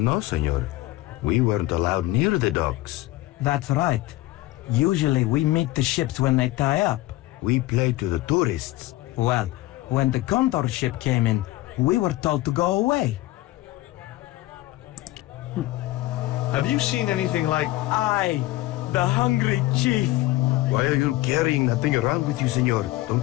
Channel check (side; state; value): right; quieter; 17.4 dB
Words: know, senor. We weren't allowed near the docks. That's right. Usually we meet the ships when they tie up. We play to the tourists. Well, when the Condor ship came in, we were told to go away. Have you seen anything like... I, the hungry chief. Why are you carrying that thing around with you, senor?